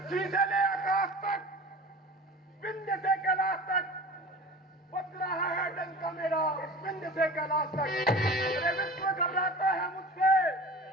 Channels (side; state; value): both; normal; correlation 0.38